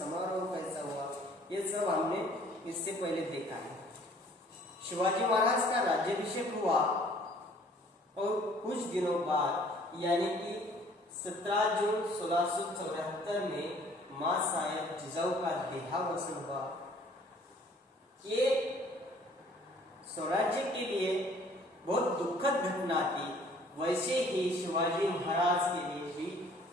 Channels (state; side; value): normal; both; correlation 0.56